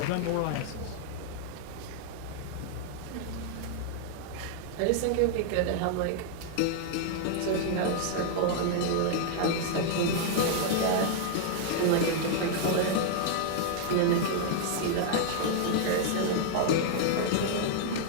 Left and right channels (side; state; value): both; different; correlation -0.01